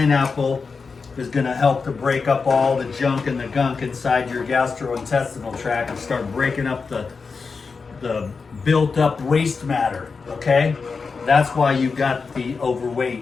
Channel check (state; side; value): quieter; right; 4.9 dB